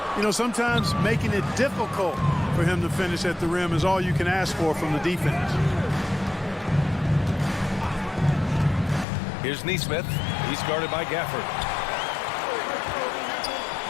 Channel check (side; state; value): right; drops out; at 9.1 s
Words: You know, sometimes making it difficult for him to finish at the rim is all you can ask for from the defense. Here's Nesmith. He's guarded by Gafford.